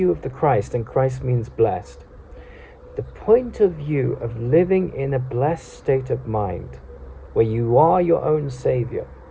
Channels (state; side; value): identical; both; correlation 1.00